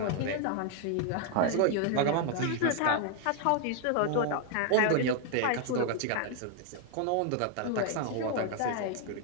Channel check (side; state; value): both; different; correlation 0.00